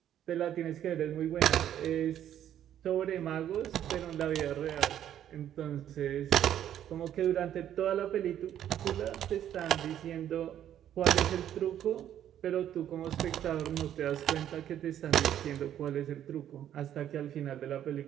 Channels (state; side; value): quieter; left; 10.7 dB